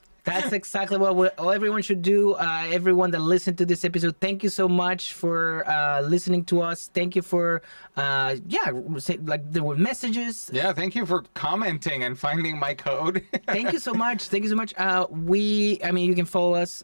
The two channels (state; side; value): inverted; both; correlation -1.00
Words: That's exactly what everyone should do. Everyone that listened to this episode, thank you so much for listening to us. Thank you for, there were messages. Yeah, thank you for commenting and finding my code. Thank you so much. You can follow us